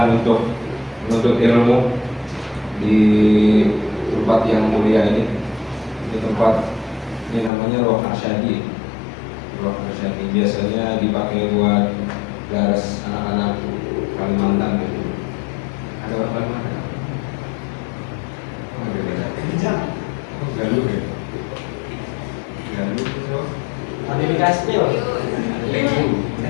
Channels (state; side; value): drops out; right; at 7.5 s